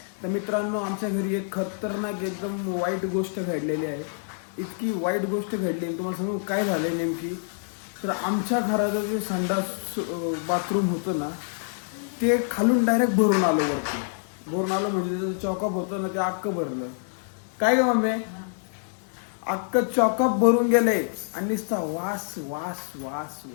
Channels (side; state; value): right; silent; digital silence